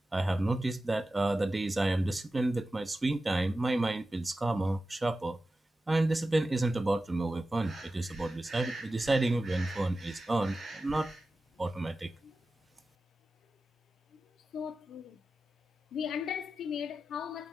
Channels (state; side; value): normal; both; correlation 0.94